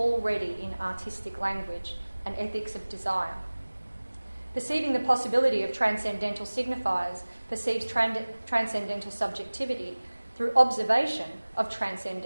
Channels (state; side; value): inverted; both; correlation -1.00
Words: in artistic language, an ethics of desire. Perceiving the possibility of transcendental signifiers perceives transcendental subjectivity through observation of